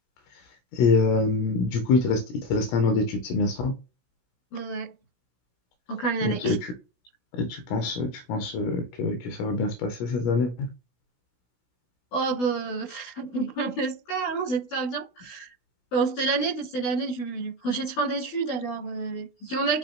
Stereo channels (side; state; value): right; late; 16 ms